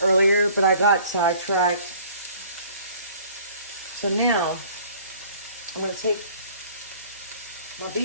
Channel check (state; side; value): inverted; both; correlation -0.52